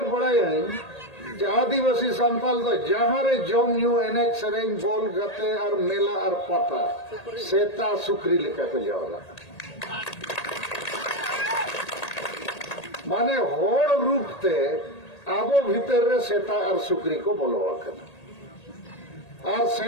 बड़ाई आदिवासी संताल तो जहाँ रे जम न्यू एनेज सेरेंग बोल गते और मेला और पता सेता सुकरी लेकर के जाओला माने होड़ रूप ते आबो भीतर रे सेता और सुकरी को बोलवा करना और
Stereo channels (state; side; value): late; right; 1.8 ms